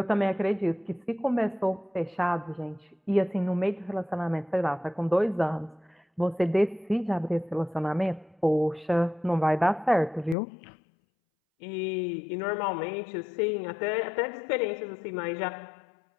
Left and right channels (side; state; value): right; drops out; at 10.4 s